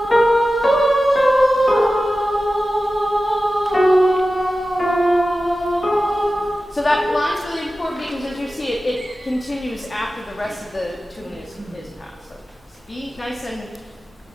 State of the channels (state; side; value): normal; both; correlation 0.94